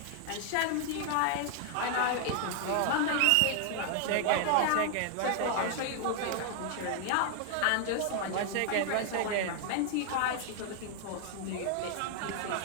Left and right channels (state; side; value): different; both; correlation 0.00